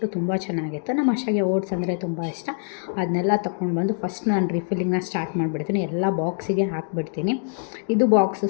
ತುಂಬ ಚೆನ್ನಾಗಿತ್ತು. ನಮ್ಮ ಅಷ್ಟಾಗೆ ಓಟ್ಸ್ ಅಂದರೆ ತುಂಬ ಇಷ್ಟ. ಅದನ್ನೆಲ್ಲ ತೊಗೊಂಡು ಬಂದು ಫಸ್ಟ್ ನಾನು ರೀಫಿಲ್ಲಿಂಗ್ನ ಸ್ಟಾರ್ಟ್ ಮಾಡಿಬಿಡ್ತೀನಿ. ಎಲ್ಲ ಬಾಕ್ಸಿಗೆ ಹಾಕಿಬಿಡ್ತೀನಿ. ಇದು ಬಾಕ್ಸು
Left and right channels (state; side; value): silent; right; 63 dB below the other